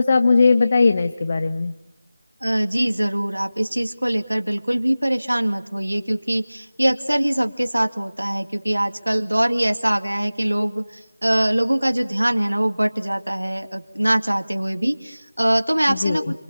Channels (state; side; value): inverted; both; correlation -0.97